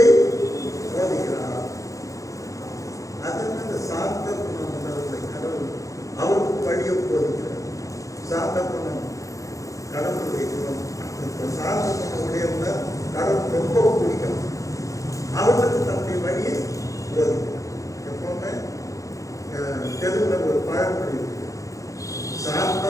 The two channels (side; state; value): right; late; 0.16 ms